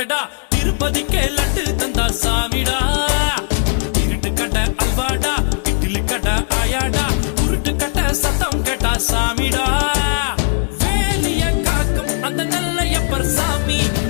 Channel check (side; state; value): right; silent; digital silence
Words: திருப்பதிக்கே லட்டு தந்தா சாமிடா இருட்டு கட்ட அல்வாடா இட்லி கட்ட ஆயாடா உருட்டு கட்ட சத்தம் கேட்டா சாமிடா வேலிய காக்கும் அந்த நல்லையப்பர் சாமி